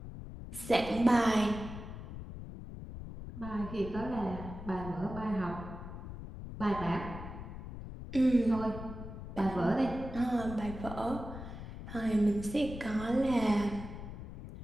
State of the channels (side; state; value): left; noise; rumble, 10 dB below the sound